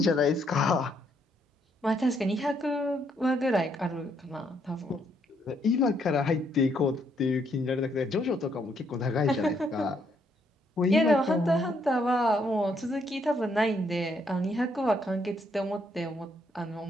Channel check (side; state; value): both; normal; correlation 0.72